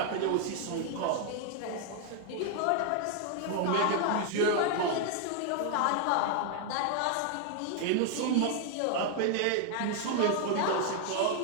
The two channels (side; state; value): both; different; correlation 0.00